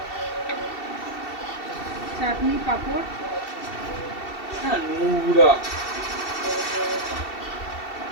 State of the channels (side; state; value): right; late; 2.7 ms